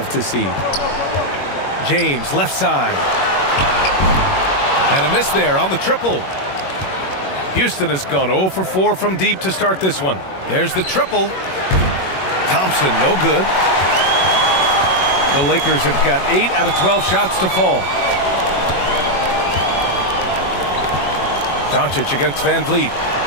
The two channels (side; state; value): right; late; 21 ms